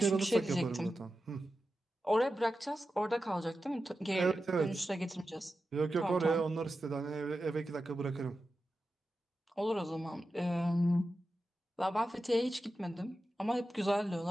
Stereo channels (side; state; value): both; normal; correlation 0.92